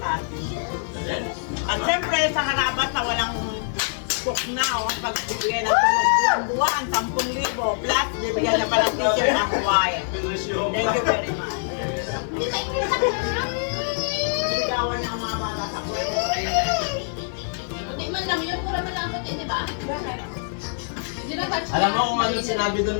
At siyempre sa harabat na walang cook na o pagbibigay ng tulong buwan, 10,000 plus bibigyan na pala teacher ng Hawaii. Thank you very much. Sigawan ng mga bata sa kwento. Hindi man lang yun, pura malambot eh, di ba? Hindi na touch Alam mo kung ano sinabi doon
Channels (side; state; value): right; silent; digital silence